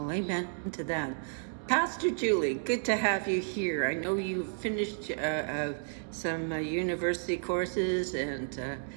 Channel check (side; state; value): left; silent; digital silence